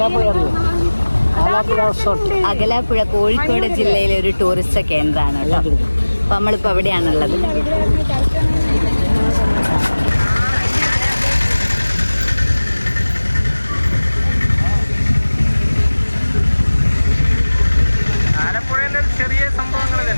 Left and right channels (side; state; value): both; inverted; correlation -1.00